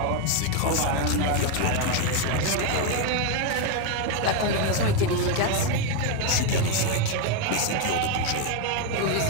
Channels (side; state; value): both; different; correlation 0.01